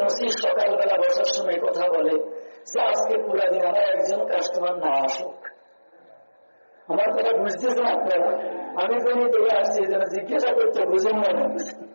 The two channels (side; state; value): both; inverted; correlation -1.00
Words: মসি সকালবেলা বসার সময় কথা বলে যে আজকে পুরা দিন আমার একজন কাস্টমার না আসুক, আমার কথা বুঝতেছেন আপনারা? আমি কোনই থেকে আসছি যেন জিজ্ঞাসা করতে বুঝেন না।